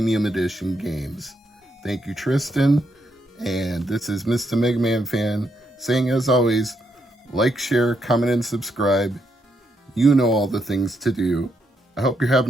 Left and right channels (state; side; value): normal; both; correlation 0.78